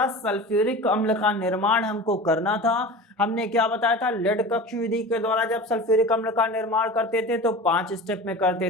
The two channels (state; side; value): normal; both; correlation 0.33